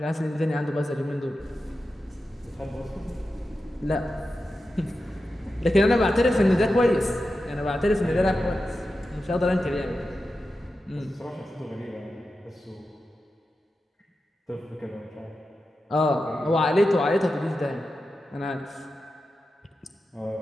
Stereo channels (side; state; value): both; normal; correlation 0.91